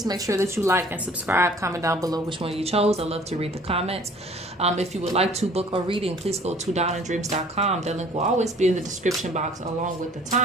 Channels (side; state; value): both; normal; correlation 0.52